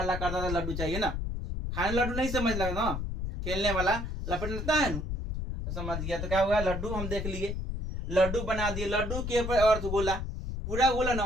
करता था लड्डू चाहिए ना। खाने लड्डू नहीं समझ लगा ना, खेलने वाला लपट लेता है ना, तो समझ गया। तो क्या हुआ? लड्डू हम देख लिए, लड्डू बना दिए। लड्डू के ऊपर अर्धगोला, पूरा गोला ना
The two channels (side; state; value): left; noise; rumble, 4 dB below the sound